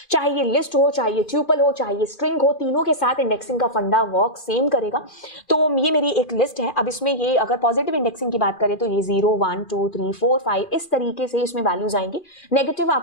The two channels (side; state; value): right; late; 2.4 ms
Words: चाहे ये लिस्ट हो, चाहे ये ट्यूपल हो, चाहे ये स्ट्रिंग हो, तीनों के साथ इंडेक्सिंग का फंडा वर्क सेम करेगा। तो ये मेरी एक लिस्ट है। अब इसमें ये अगर पॉजिटिव इंडेक्सिंग की बात करें तो ये 0 1 2 3 4 5 इस तरीके से इसमें वैल्यूज आएंगी। नेगेटिव